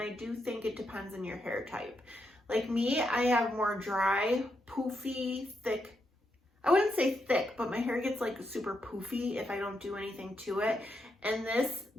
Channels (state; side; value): normal; both; correlation 0.81